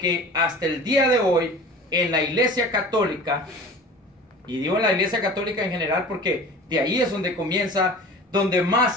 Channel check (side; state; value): both; normal; correlation 0.40